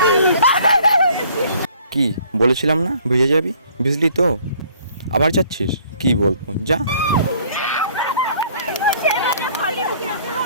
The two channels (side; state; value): both; inverted; correlation -0.58